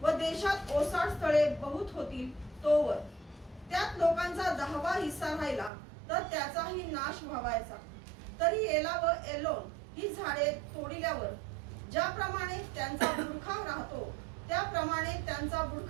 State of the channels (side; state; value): left; drops out; at 5.7 s